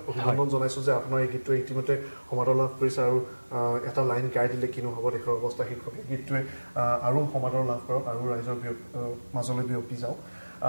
অভিনন্দন জনাইছোঁ যে আপোনাৰ এই গীতটোৱে ইতিমধ্যে সমাদৰ লাভ কৰিছে আৰু এটা লাইন গাই দিলে কিনো হ'ব দেশৰ অৱস্থা শীৰ্ষক এই গীতটোৱে আৰু সমাদৰ লাভ কৰক আৰু ৰাইজৰ মাজলৈ বিয়পি যাওক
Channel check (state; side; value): inverted; both; correlation -1.00